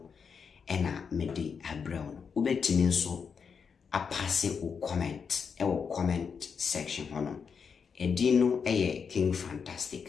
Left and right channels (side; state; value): right; quieter; 6.2 dB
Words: ena mede abrown. Ubetini so a passe o comment section hono. Edino eye King